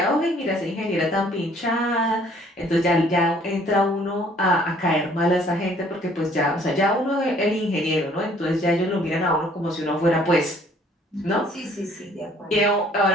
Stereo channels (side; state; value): both; normal; correlation 0.59